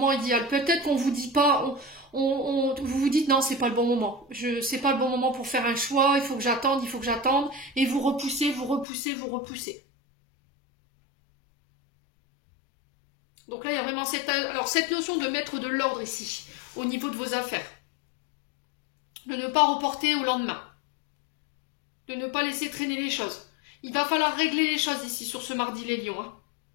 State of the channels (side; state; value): right; drops out; at 8.8 s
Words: idéal. Peut-être qu'on vous dit pas, vous vous dites non, c'est pas le bon moment. C'est pas le bon moment pour faire un choix, il faut que j'attende, et vous repoussez. Donc là, il y a vraiment cette notion de mettre de l'ordre ici, au niveau de vos affaires. De ne pas reporter au lendemain. De ne pas laisser traîner les choses. Il va falloir régler les choses ici, sur ce mardi, les lions, hein.